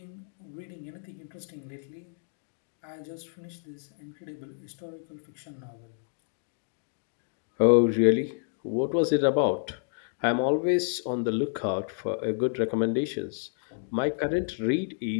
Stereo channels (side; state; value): right; silent; digital silence